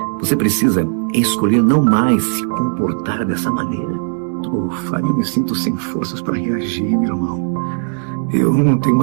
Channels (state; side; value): silent; left; digital silence